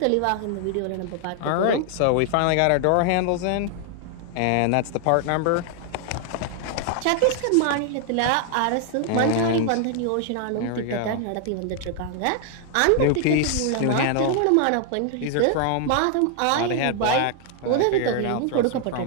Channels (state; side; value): different; both; correlation 0.00